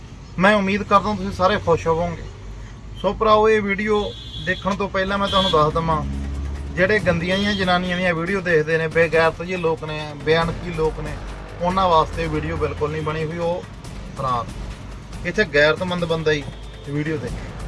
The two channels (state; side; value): identical; both; correlation 1.00